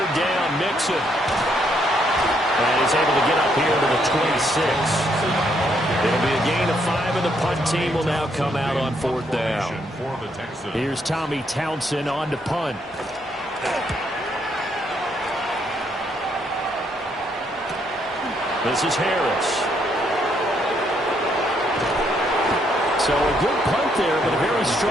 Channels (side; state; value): both; normal; correlation 0.73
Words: down, Mixon. And he's able to get up here to the 26. It'll be a gain of 5, and the punt team will now come out on fourth down. Here's Tommy Townsend on to punt. This is Harris. So a good punt there, but a very